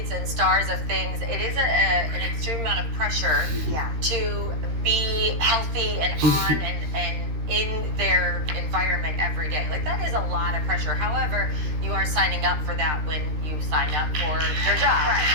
athletes and stars of things, it is an extreme amount of pressure to be healthy and on and in their environment every day. Like, that is a lot of pressure. However, you are signing up for that when you sign up for their job. Right.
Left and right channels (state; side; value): late; left; 13 ms